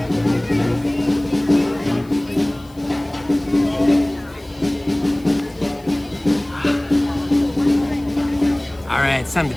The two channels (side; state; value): left; noise; hiss, 28 dB below the sound